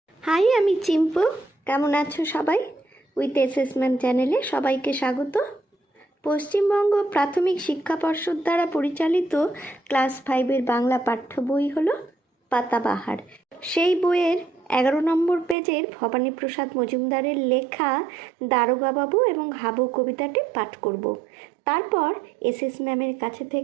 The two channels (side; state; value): left; drops out; at 15.6 s